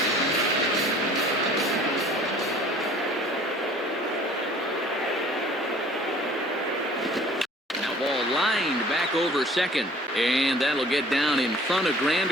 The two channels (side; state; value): both; normal; correlation 0.51